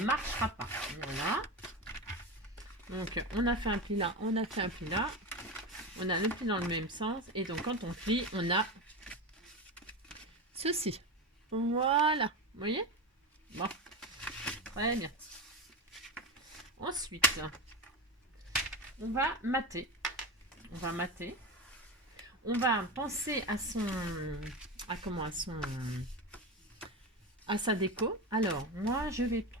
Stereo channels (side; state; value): both; normal; correlation 0.20